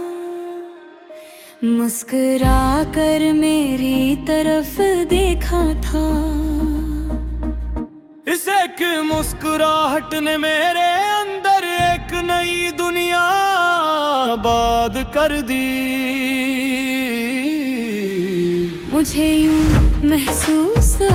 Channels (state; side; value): identical; both; correlation 1.00